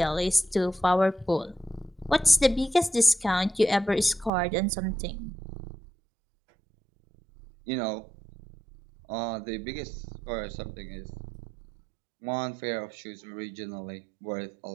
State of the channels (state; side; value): drops out; left; at 4.3 s